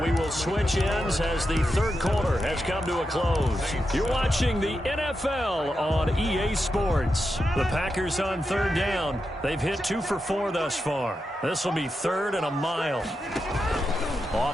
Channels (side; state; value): both; normal; correlation 0.87